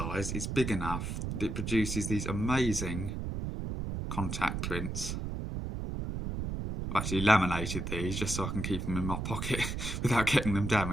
is big enough that it produces these amazing contact prints. I've actually laminated these just so I can keep them in my pocket without getting them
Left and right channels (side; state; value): right; noise; rumble, 4 dB below the sound